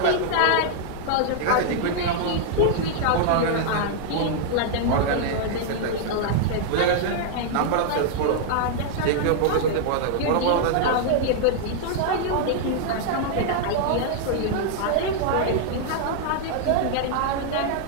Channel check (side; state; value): both; different; correlation -0.01